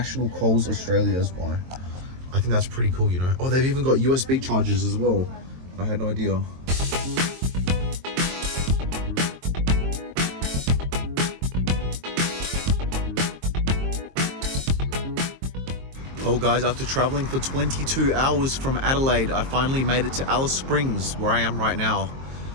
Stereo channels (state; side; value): late; left; 22 ms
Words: calls Australia as well. I think that's pretty cool, you know. Oh, they've even got USB chargers as well. I had no idea. Well guys, after traveling for 22 hours from Adelaide, I finally made it to Alice Springs, where I am right now.